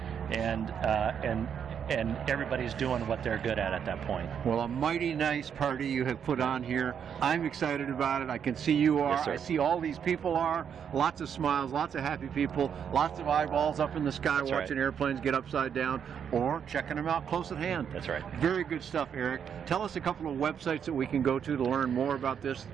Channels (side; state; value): left; quieter; 7.9 dB